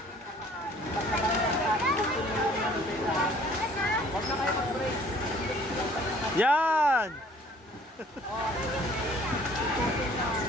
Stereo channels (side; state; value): both; normal; correlation 0.55